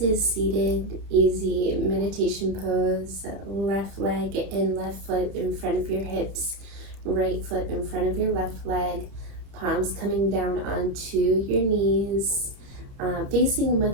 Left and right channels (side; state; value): left; late; 30 ms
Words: seated, easy meditation pose. Left leg and left foot in front of your hips, right foot in front of your left leg, palms coming down onto your knees, facing